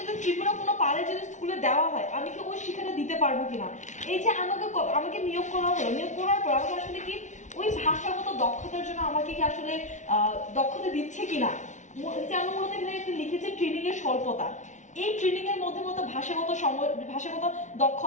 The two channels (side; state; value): right; late; 0.36 ms